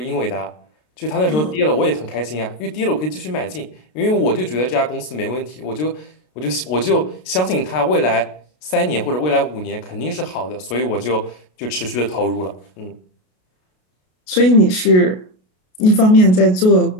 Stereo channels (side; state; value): right; late; 33 ms